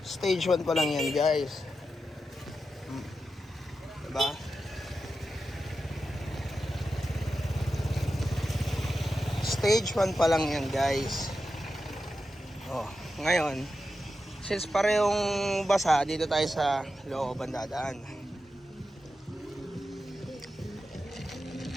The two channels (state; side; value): normal; both; correlation 0.90